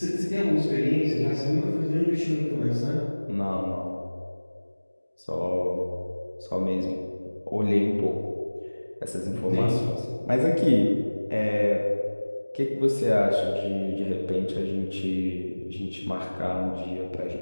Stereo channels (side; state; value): both; inverted; correlation -1.00